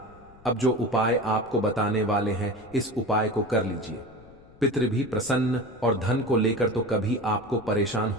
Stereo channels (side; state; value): left; noise; rumble, 24 dB below the sound